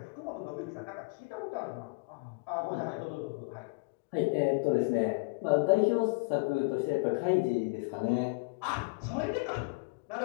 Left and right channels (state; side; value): quieter; right; 29.8 dB